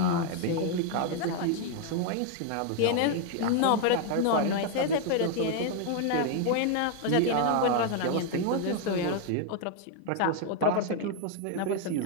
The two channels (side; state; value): both; different; correlation 0.00